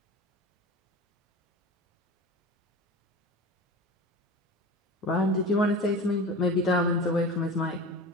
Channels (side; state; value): both; normal; correlation 0.33